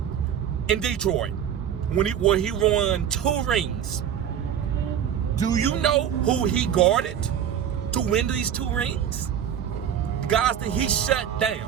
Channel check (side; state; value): left; quieter; 9.1 dB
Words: in Detroit, where he won 2 rings. Do you know who he guarded to win these 2 rings? Guys that he shut